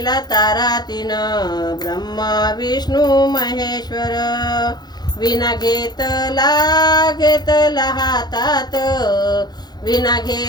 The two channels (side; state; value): right; late; 0.20 ms